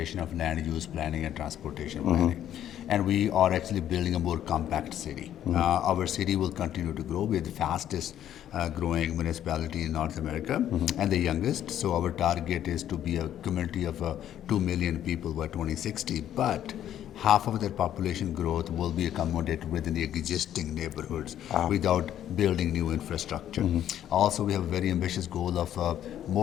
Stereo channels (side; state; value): right; quieter; 11.1 dB